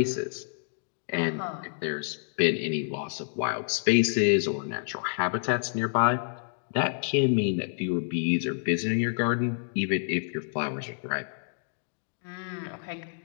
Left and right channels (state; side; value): silent; right; digital silence